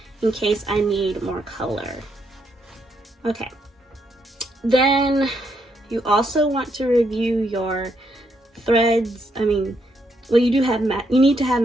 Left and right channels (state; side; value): normal; both; correlation 0.77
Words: in case I need more color. Okay, then you also want to review your threads. I mean, well, you need to have